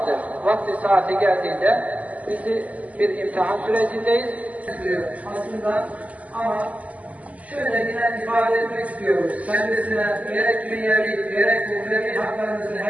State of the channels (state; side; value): late; left; 0.072 ms